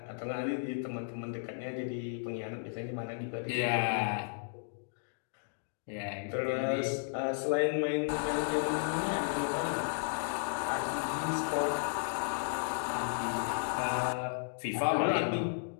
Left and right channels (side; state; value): right; silent; digital silence